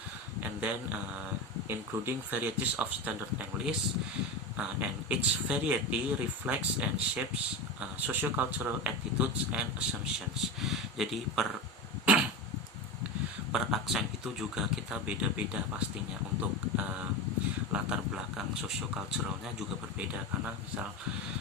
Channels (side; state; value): both; normal; correlation 0.22